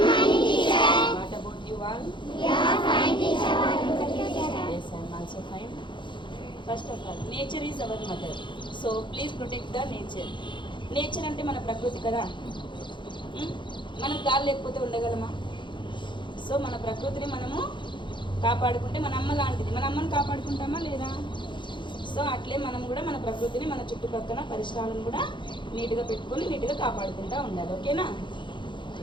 teacher. What about you all? We are fine, teacher. Yes, I am also fine. First of all, nature is our mother. So please protect the nature. Nature అంటే మన ప్రకృతి కదా. మనం గాలి లేకపోతే ఉండగలమా? So మన ప్రకృతిని మనము కాపాడుకుంటే మన అమ్మ లాంటిది. మన అమ్మని కాపాడుకుంటామా లేదా? సో అట్లే మనం కూడా మన ప్రకృతిని మన చుట్టుపక్కల పరిసరాలను కూడా నీట్గా పెట్టుకొని నీట్గా కాపాడుకుంటూ ఉండాలి. ఓకేనా?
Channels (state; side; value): late; right; 0.23 ms